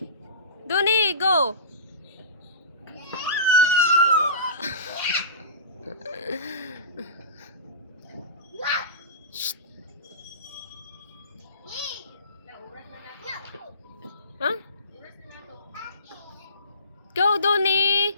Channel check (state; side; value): inverted; both; correlation -0.35